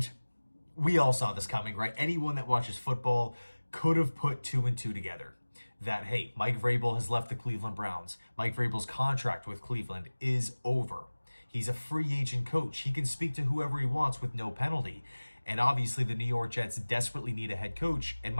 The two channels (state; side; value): inverted; both; correlation -1.00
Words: we all saw this coming, right? Anyone that watches football could have put two and two together. That, hey, Mike Vrabel has left the Cleveland Browns. Mike Vrabel's contract with Cleveland is over. He's a free agent coach. He can speak to whoever he wants with no penalty. And obviously, the New York Jets desperately need a head coach. And